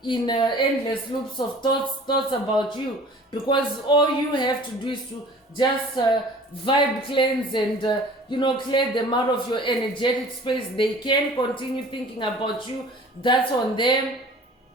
in endless loops of thoughts about you, because all you have to do is to just vibe cleanse and clear them out of your energetic space. They can continue thinking about you. That's on them.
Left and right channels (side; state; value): both; normal; correlation 0.46